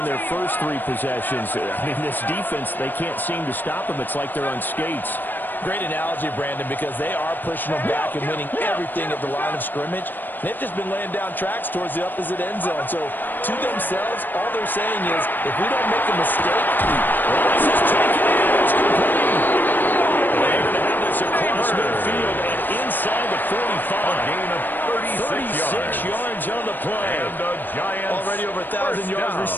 their first 3 possessions. I mean, this defense, they can't seem to stop them. It's like they're on skates. Great analogy, Brandon, because they are pushing them back and winning everything at the line of scrimmage. They've just been laying down tracks towards the opposite end zone. So to themselves, all they're saying is, if we don't make a mistake, this is taken in. It's complete. They're going to have this across midfield and inside the 45. A gain of 36 yards on the play. And the Giants already over 1,000 yards down.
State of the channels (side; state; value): right; late; 0.091 ms